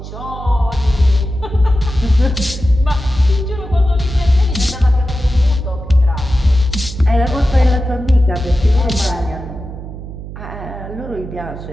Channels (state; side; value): noise; right; hum, 11 dB below the sound